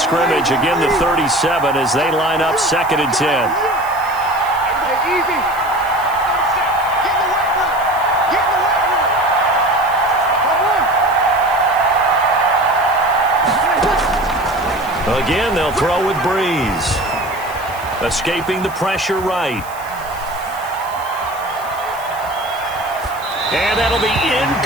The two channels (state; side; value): noise; right; hiss, 19 dB below the sound